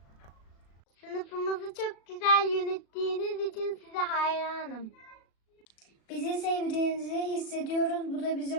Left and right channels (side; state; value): right; late; 36 ms